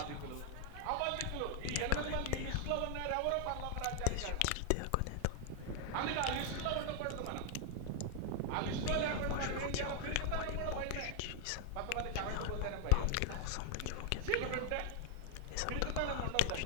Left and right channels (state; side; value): different; both; correlation 0.00